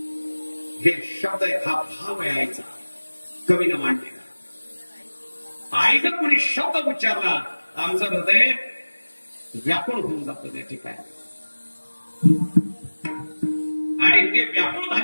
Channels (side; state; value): both; inverted; correlation -1.00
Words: हे शब्द हा भाव यायचा कवीनं मांडलेला. आई जर कोणी शब्द उच्चारला आमचं हृदय व्याकुळ होऊन जातं त्या ठिकाणी, आणि ते व्याकुळ